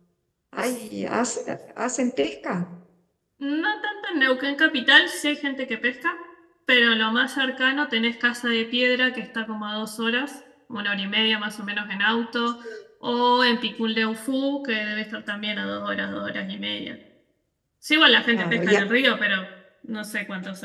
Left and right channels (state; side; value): identical; both; correlation 1.00